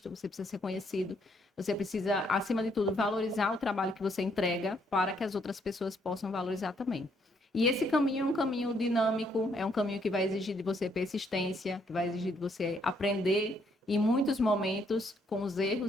você precisa ser conhecido, você precisa, acima de tudo, valorizar o trabalho que você entrega para que as outras pessoas possam valorizar também. E esse caminho é um caminho dinâmico, é um caminho que vai exigir de você persistência, que vai exigir de você aprender em muitos momentos, com os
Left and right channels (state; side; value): normal; both; correlation 0.71